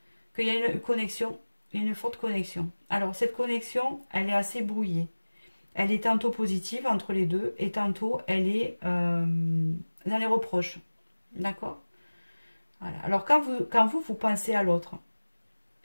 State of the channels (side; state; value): both; inverted; correlation -1.00